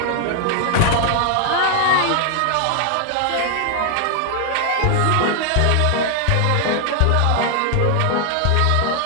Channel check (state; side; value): different; both; correlation 0.00